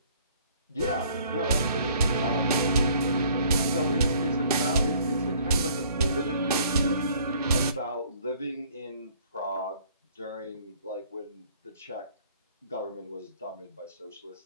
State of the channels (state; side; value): inverted; both; correlation -0.57